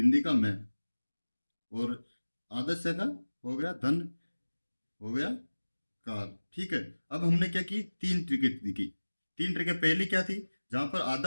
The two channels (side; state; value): both; inverted; correlation -1.00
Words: का मैं, और आधे से का हो गया धन, हो गया कार। ठीक है, अब हमने क्या की, तीन ट्रिकेट दिखी। तीन ट्रिकेट पहली क्या थी, जहां पर